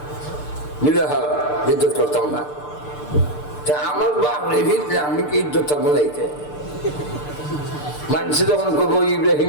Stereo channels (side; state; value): right; late; 6.7 ms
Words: মিলাহা ইজ্জত করতাম না তা আমার বাপ রে ভিতরে আমি কি ইজ্জত থাকবো নাইতে মানুষ যখন করবো